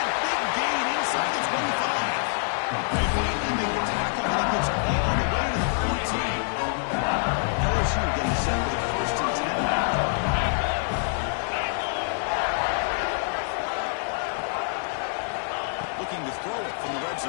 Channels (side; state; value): right; silent; digital silence